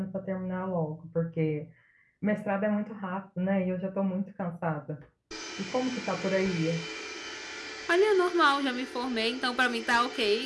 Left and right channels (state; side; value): identical; both; correlation 1.00